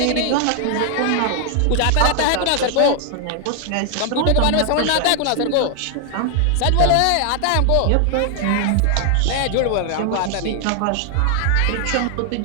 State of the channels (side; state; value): both; different; correlation 0.00